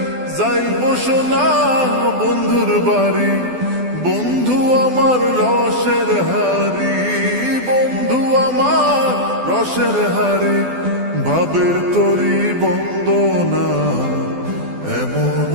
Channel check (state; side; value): late; left; 12 ms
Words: যাইব সোনা বন্ধুর বাড়ি। বন্ধু আমার রসের হারি, বন্ধু আমার রসের হারি, ভাবের তরি বন্দনা এমন